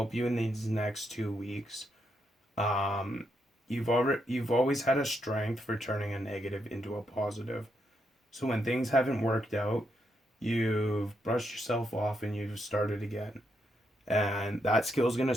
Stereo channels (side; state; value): both; normal; correlation 0.79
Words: you in these next 2 weeks. Um, you've always had a strength for turning a negative into a positive. So when things haven't worked out, you've brushed yourself off and you've started again. And that skill is going to